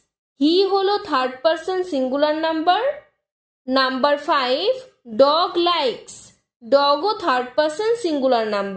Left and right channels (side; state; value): both; identical; correlation 1.00